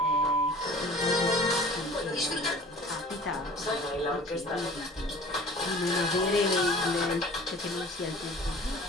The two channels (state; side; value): normal; both; correlation 0.45